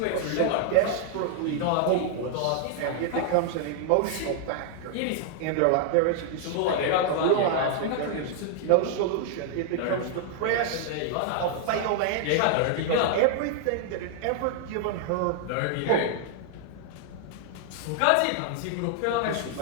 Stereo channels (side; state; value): both; different; correlation 0.00